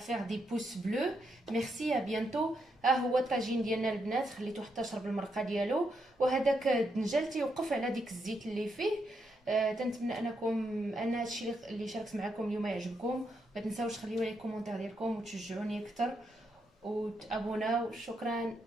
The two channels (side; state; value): both; normal; correlation 0.80